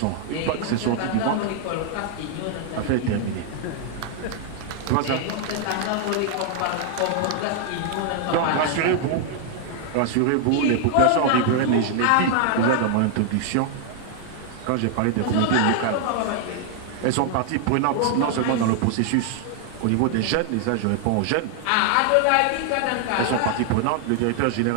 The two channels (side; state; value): both; different; correlation 0.00